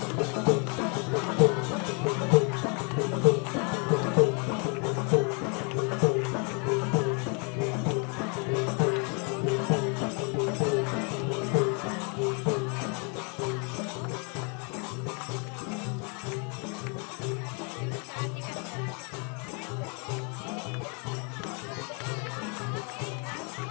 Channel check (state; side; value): quieter; right; 35.6 dB